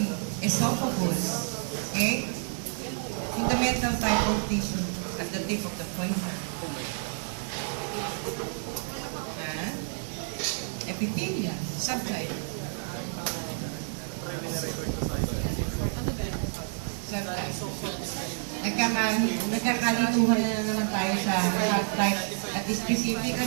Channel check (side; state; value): left; silent; 58 dB below the other